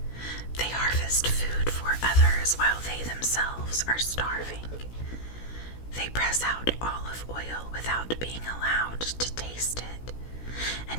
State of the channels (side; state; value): right; late; 16 ms